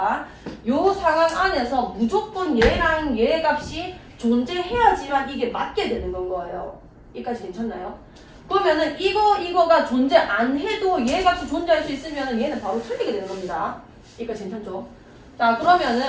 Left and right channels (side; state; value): both; identical; correlation 1.00